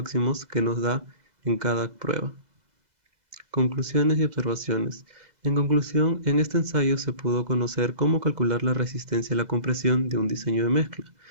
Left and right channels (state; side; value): late; left; 2.0 ms